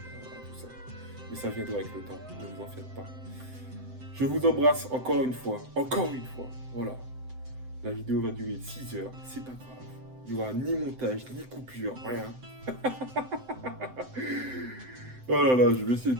ça. Mais ça viendra avec le temps, ne vous en faites pas. Je vous embrasse encore une fois, voilà. La vidéo va durer 6 heures, c'est pas grave. Il n'y aura ni montage, ni coupure, rien. Oh là là, je vais essayer de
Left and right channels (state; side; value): late; left; 7.8 ms